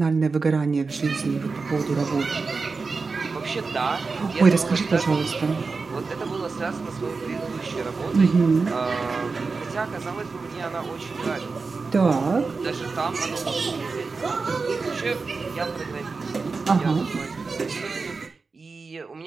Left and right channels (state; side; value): quieter; left; 4.3 dB